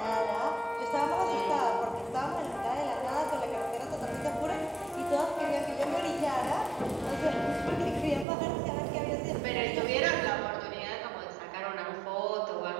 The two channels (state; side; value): drops out; left; at 8.2 s